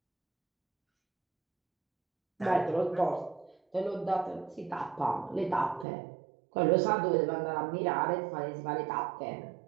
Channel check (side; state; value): left; drops out; at 5.9 s